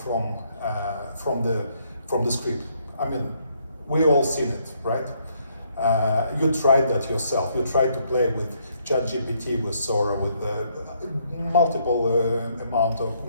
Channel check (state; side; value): inverted; both; correlation -0.71